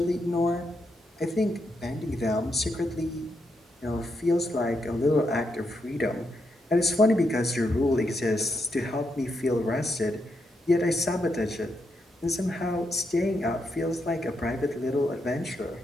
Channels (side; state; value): both; normal; correlation 0.81